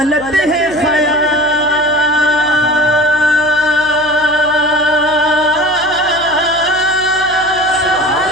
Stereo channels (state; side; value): noise; right; hum, 19 dB below the sound